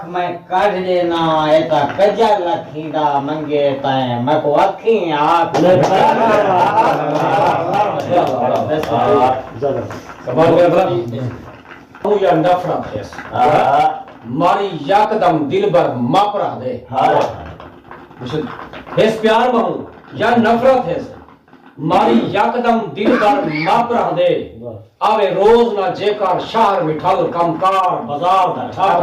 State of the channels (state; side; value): identical; both; correlation 1.00